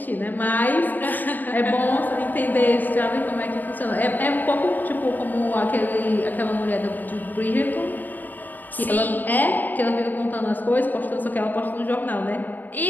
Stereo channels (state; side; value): late; right; 0.087 ms